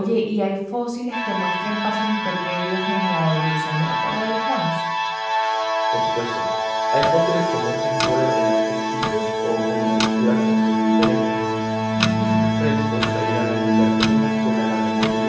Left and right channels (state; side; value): identical; both; correlation 1.00